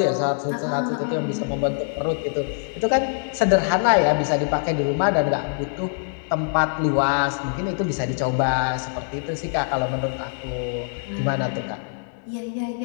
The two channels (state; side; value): silent; right; 63 dB below the other